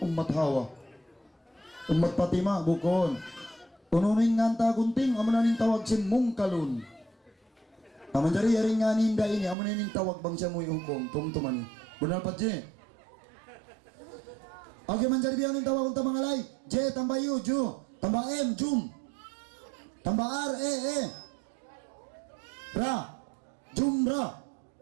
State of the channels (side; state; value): left; drops out; at 9.6 s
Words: ummat Hawa. Ummat Fatima, bukon. Ununin nga ta gunting, amo na nin tawag si mungkalun. Naman dari yaring nga ninda ini, amo na nin tawag bang siya mo yung tungtuman. Bunal patje. Okay, manjari biang ning tawag unta mga lay. J tambah U, Ju. Tambah M, Jum. Tambah R, E. Ra. Jumra.